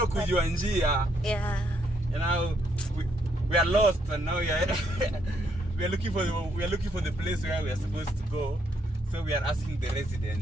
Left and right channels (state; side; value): normal; both; correlation 0.74